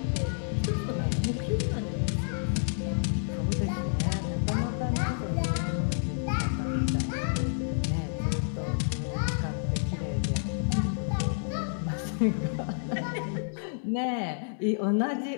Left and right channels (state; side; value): silent; right; digital silence